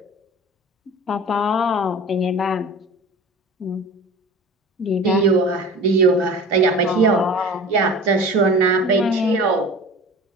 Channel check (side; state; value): both; normal; correlation 0.39